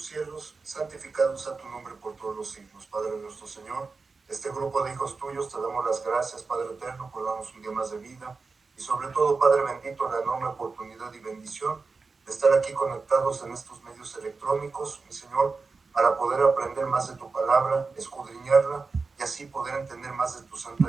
cielos, santificado sea tu nombre por todos los siglos. Padre nuestro Señor, este grupo de hijos tuyos te damos las gracias, Padre eterno, por darnos un día más de vida. Y sobre todo, Padre bendito, la enorme oportunidad y bendición de estar aquí conectados en estos medios electrónicos, mi Señor, para poder aprender más de tu palabra, escudriñarla y así poder entender más de tu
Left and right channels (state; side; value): quieter; left; 4.3 dB